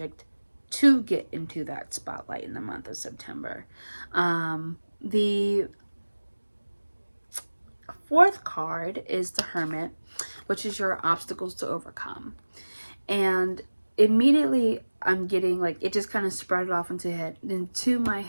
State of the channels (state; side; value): inverted; both; correlation -1.00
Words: to get into that spotlight in the month of September. The fourth card is the Hermit, which is your obstacles to overcome. And immediately I'm getting like, it just kind of sprouted off into my